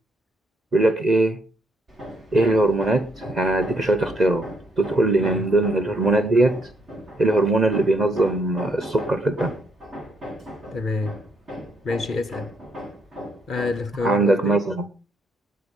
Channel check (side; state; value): both; normal; correlation 0.72